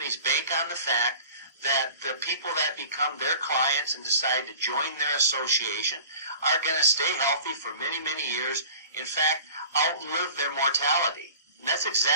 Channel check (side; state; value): both; inverted; correlation -0.42